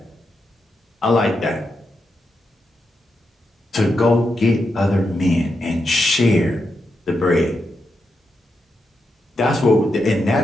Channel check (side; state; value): both; normal; correlation 0.85